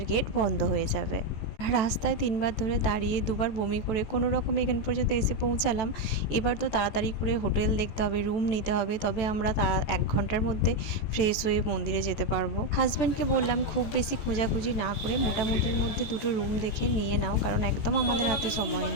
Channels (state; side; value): late; right; 14 ms